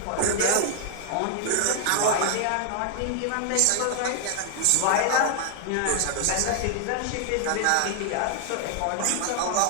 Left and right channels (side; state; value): both; different; correlation 0.00